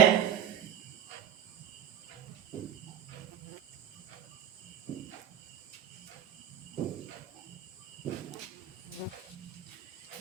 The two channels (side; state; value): left; quieter; 9.4 dB